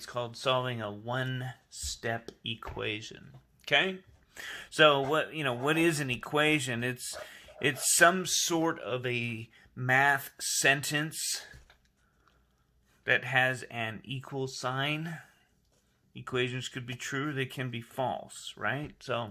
called solving a one-step equation. Okay, so what is an equation? It's some sort of a math sentence that has an equal sign. Equations could be true, they can be false, right?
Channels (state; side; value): identical; both; correlation 1.00